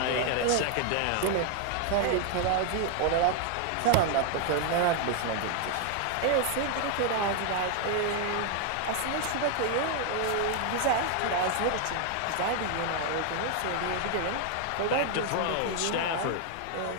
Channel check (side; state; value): both; different; correlation 0.00